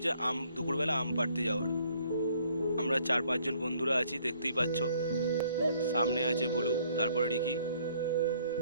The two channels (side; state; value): both; inverted; correlation -0.63